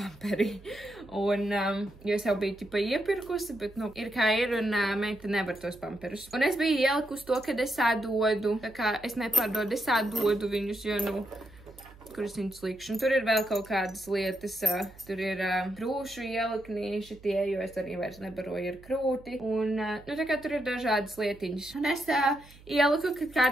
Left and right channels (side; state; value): right; noise; hum, 22 dB below the sound